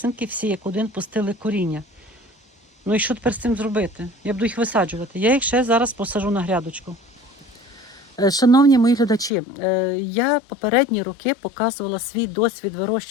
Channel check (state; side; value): drops out; right; at 9.3 s